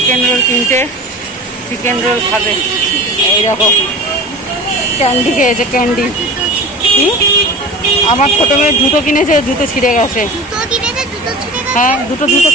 রোল কিনতে, চিকেন রোল খাবে। এই দেখো ক্যান্ডি খেয়েছে, ক্যান্ডি। আমার ছোট মেয়ের জুতো কিনেছে, জুতো ছিঁড়ে গেছে। হ্যাঁ দুটো জুতো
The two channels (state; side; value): normal; both; correlation 0.35